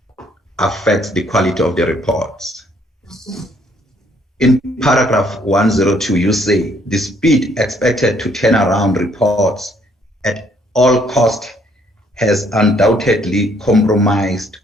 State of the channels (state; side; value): normal; both; correlation 0.66